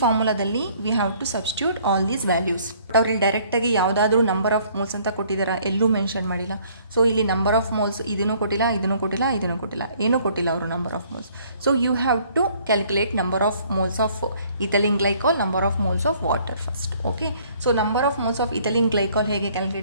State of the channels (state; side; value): inverted; both; correlation -0.60